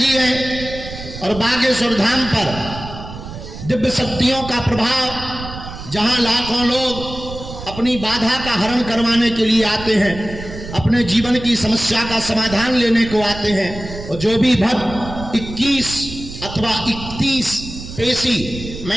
हैं और बागेश्वर धाम पर दिव्य शक्तियों का प्रभाव, जहां लाखों लोग अपनी बाधा का हरण करवाने के लिए आते हैं, अपने जीवन की समस्या का समाधान लेने को आते हैं। और जो भी भक्त 21 अथवा 31 पेशी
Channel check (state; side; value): noise; right; rumble, 11 dB below the sound